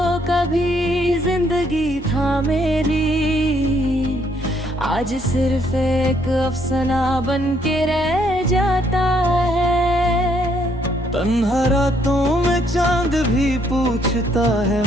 कभी जिंदगी था मेरी, आज सिर्फ एक अफसाना बन के रह जाता है। तन्हा रातों में चांद भी पूछता है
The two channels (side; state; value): both; normal; correlation 0.69